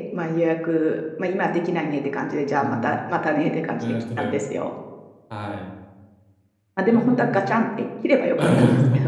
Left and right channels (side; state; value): both; identical; correlation 1.00